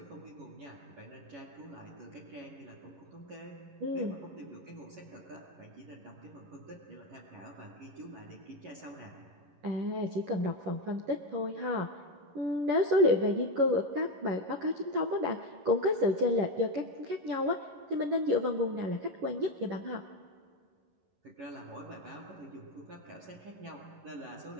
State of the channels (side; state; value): left; late; 11 ms